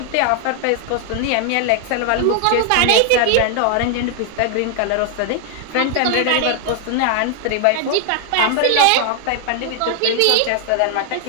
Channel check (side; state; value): both; different; correlation 0.00